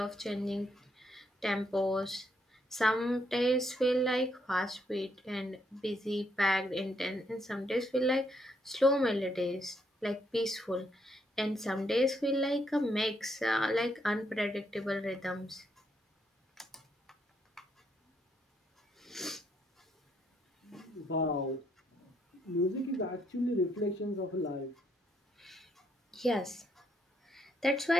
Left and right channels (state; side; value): normal; both; correlation 0.74